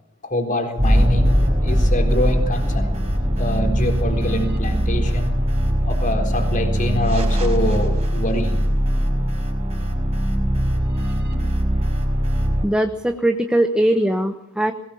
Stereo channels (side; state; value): both; normal; correlation 0.86